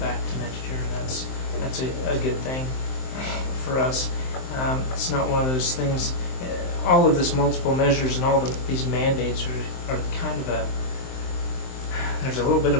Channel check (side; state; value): right; late; 23 ms